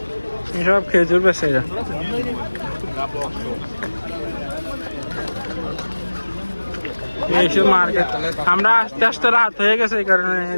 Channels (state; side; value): inverted; both; correlation -1.00